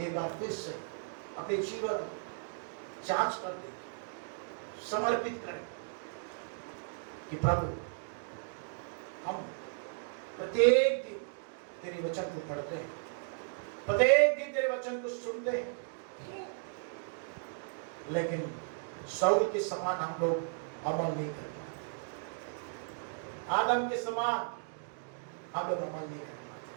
बार फिर से अपने जीवन जांच कर दें, समर्पित करें कि प्रभु हम प्रत्येक दिन तेरे वचन को पढ़ते हैं, प्रत्येक दिन तेरे वचन को सुनते हैं, लेकिन शाऊल के समान हम लोग अमल नहीं कर पाते। आदम के समान हम लोग अमल नहीं कर पाते।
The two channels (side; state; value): left; silent; digital silence